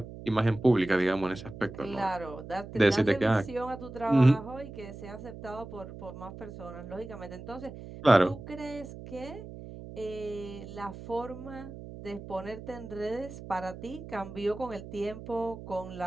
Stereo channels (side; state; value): right; noise; hum, 13 dB below the sound